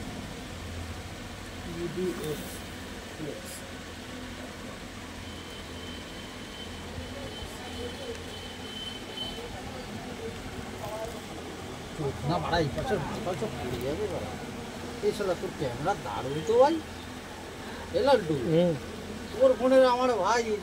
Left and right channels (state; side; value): identical; both; correlation 1.00